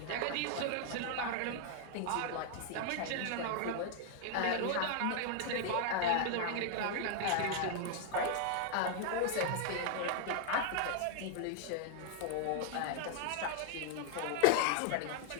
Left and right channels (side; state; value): both; different; correlation 0.00